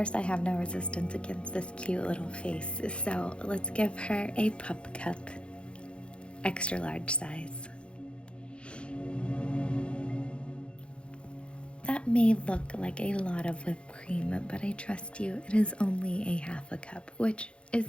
I have no resistance against this cute little face, so let's give her a pup cup, extra large size. That may look like a lot of whipped cream, but I trust you, it is only a half a cup, which is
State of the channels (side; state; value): right; late; 0.057 ms